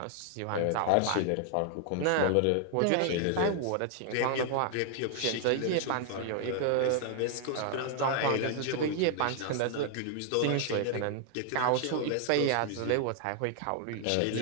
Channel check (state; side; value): different; both; correlation 0.00